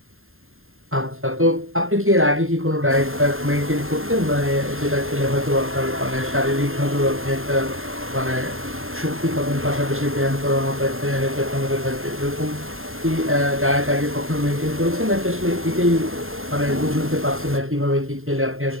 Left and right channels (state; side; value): late; left; 0.61 ms